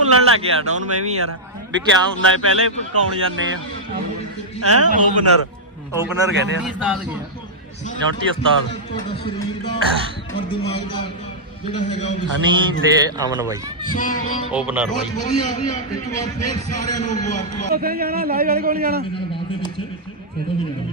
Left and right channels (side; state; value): both; normal; correlation -0.08